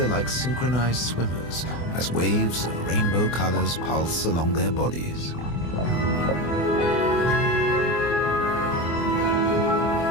like synchronized swimmers as waves of rainbow colors pulse along their bodies.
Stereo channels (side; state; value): right; late; 24 ms